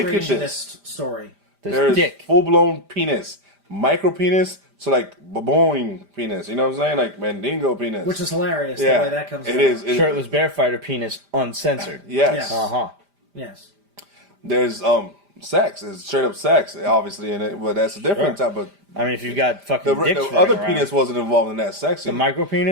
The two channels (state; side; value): late; left; 5.0 ms